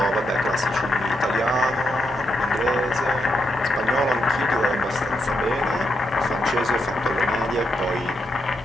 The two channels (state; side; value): normal; both; correlation 0.82